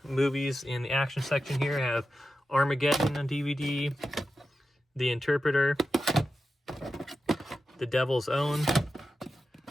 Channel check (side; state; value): both; normal; correlation 0.91